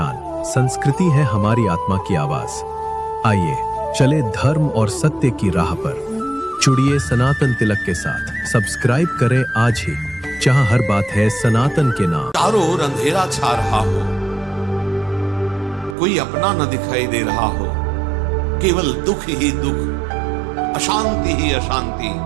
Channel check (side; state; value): left; drops out; at 16.0 s